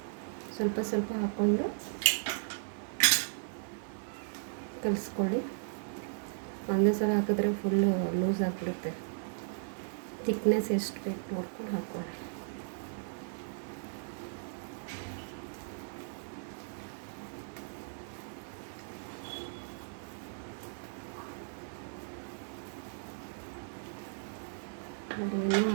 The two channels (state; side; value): silent; left; 54 dB below the other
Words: ಸ್ವಲ್ಪ ಸ್ವಲ್ಪ ಹಾಕ್ಕೊಂಡು ಕಲಿಸ್ಕೊಳ್ಳಿ. ಒಂದೇ ಸಲ ಹಾಕಿದ್ರೆ ಫುಲ್ಲು ಲೂಸ್ ಆಗಿಬಿಡುತ್ತೆ. ಥಿಕ್ನೆಸ್ ಎಷ್ಟು ಬೇಕು ನೋಡ್ಕೊಂಡು ಹಾಕ್ಕೊಳ್ಳಿ. ನೋಡಿ, ಇನ್ನೂ